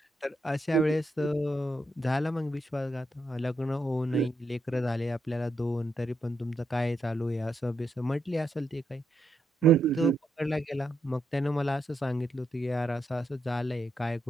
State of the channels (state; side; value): normal; both; correlation 0.81